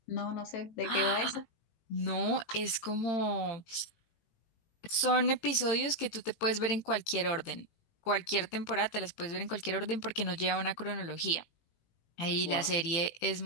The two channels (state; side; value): late; right; 18 ms